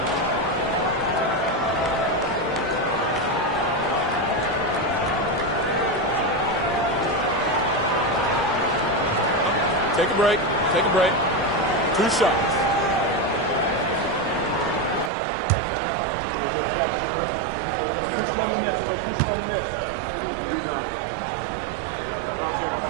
Take a break. Take a break. 2 shots.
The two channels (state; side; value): drops out; left; at 15.1 s